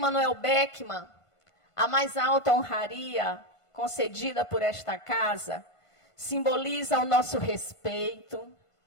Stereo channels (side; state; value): right; late; 1.5 ms